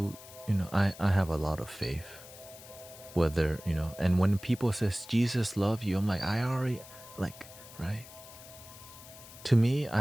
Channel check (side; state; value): left; noise; hiss, 18 dB below the sound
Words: I have a lot of faith. Whether, and when people says Jesus love you, I'm like, I already, right? To me, I